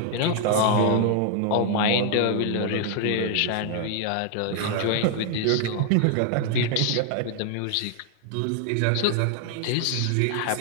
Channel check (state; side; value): different; both; correlation 0.00